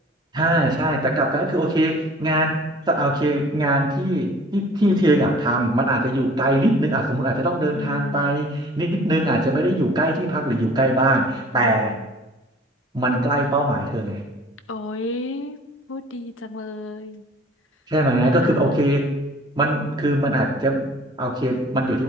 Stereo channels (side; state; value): both; normal; correlation 0.49